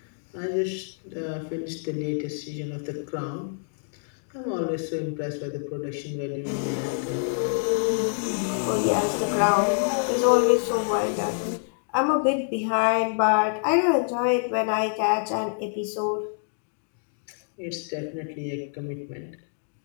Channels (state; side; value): silent; right; digital silence